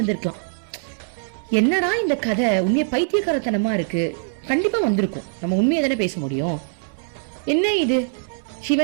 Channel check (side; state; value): left; silent; 64 dB below the other